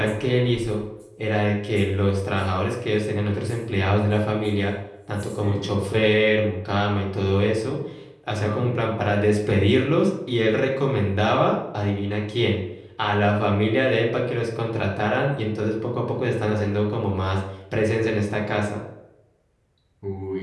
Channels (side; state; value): both; identical; correlation 1.00